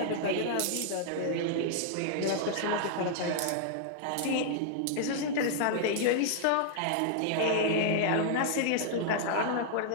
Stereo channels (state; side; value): different; both; correlation -0.01